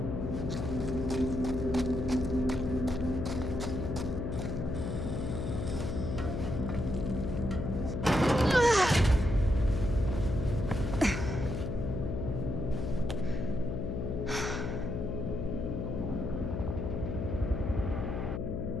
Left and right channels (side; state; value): left; noise; hum, 2 dB below the sound